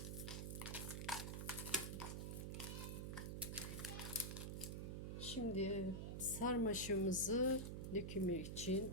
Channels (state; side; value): noise; right; hum, 3 dB below the sound